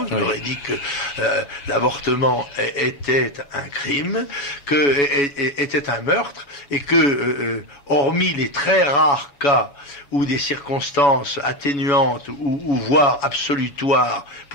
je leur ai dit que l'avortement était un crime, était un meurtre, et que, hormis les très rares cas où des circonstances atténuantes ou voire absolutoires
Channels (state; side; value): late; right; 7.1 ms